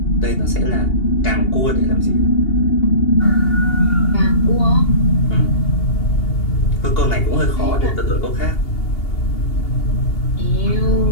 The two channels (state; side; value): late; right; 2.8 ms